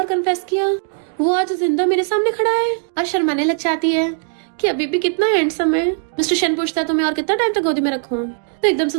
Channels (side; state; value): left; silent; 62 dB below the other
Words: कन्फेस किया वो आज जिंदा मेरे सामने खड़ा है। और शर्माने लग जाती है कि अभी भी कितना हैंडसम है। मिस्टर शेन पूछता है तुम्हें और कितना टाइम तक गोदी में रखूं, तो एकदम से